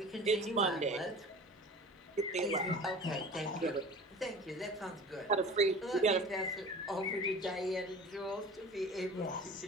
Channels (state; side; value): normal; both; correlation 0.40